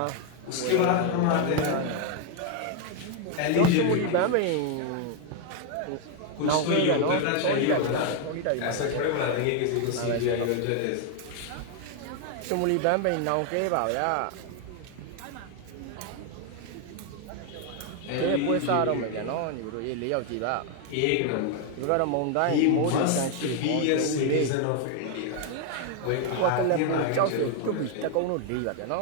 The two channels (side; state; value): both; different; correlation 0.01